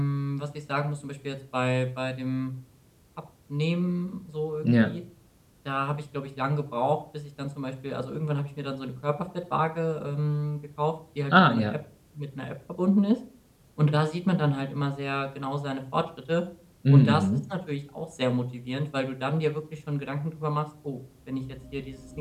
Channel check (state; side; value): identical; both; correlation 1.00